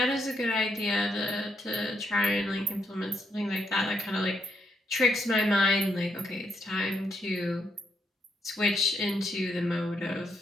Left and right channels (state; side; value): normal; both; correlation 0.77